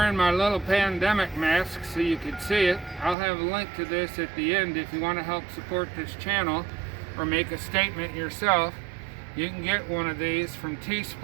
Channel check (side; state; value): left; drops out; at 3.2 s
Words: my little pandemic mask so you can see it. I'll have a link to this at the end if you want to help support this channel or make a statement yourself. You can get one of these from